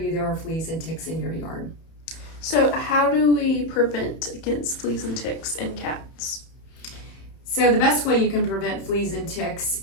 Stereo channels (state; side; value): late; right; 31 ms